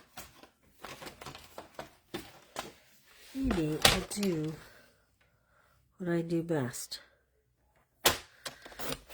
I'll do what I do best.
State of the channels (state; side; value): identical; both; correlation 1.00